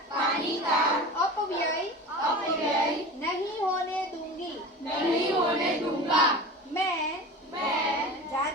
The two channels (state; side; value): normal; both; correlation 0.33